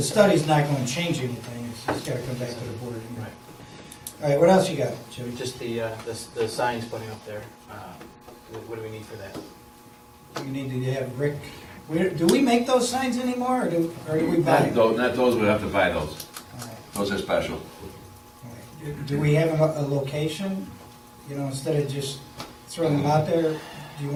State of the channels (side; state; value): both; identical; correlation 1.00